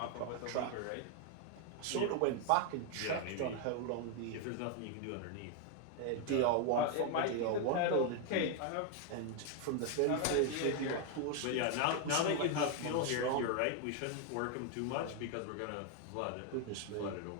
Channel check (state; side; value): different; both; correlation 0.01